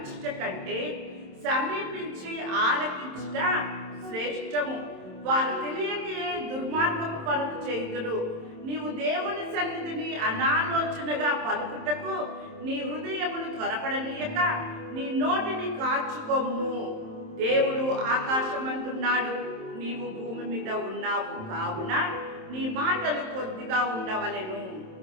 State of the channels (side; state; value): left; late; 27 ms